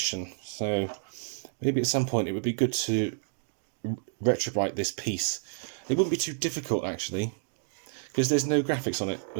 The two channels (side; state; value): left; silent; digital silence